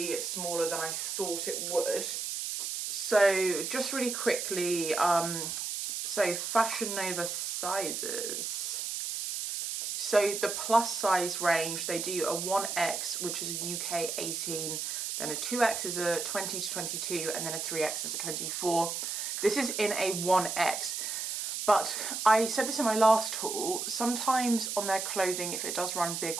smaller than I thought it would. So just really quickly, so Fashion Nova sizes. So the plus size range, they do a 1X, which is a UK 18, then a 2X is a 20 to 22, and then a 3X is a 24. This is in a 1X. But I said this in my last haul, sometimes on their clothing, if it does run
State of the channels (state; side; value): noise; right; hiss, 3 dB below the sound